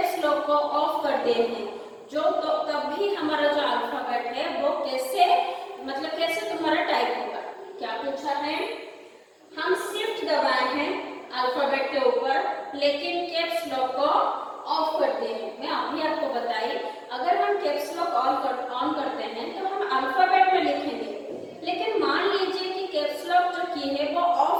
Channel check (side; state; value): both; identical; correlation 1.00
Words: लॉक को ऑफ कर दिए हैं, जो तो तब भी हमारा जो अल्फाबेट है वो कैसे मतलब कैसे तुम्हारा टाइप होगा। क्या पूछा है, हम शिफ्ट दबाए हैं अल्फाबेट के ऊपर लेकिन कैप्स लॉक को ऑफ करते हैं। मैं अभी आपको बताई, अगर हम कैप्स लॉक ऑन करते हैं तो हम अल्फाबेट में लिखेंगे, लेकिन मान लीजिए कि कैप्स लॉक जो की है वो